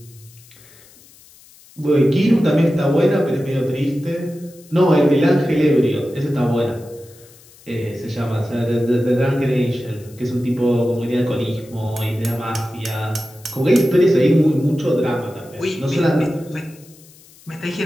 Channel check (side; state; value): left; noise; hiss, 25 dB below the sound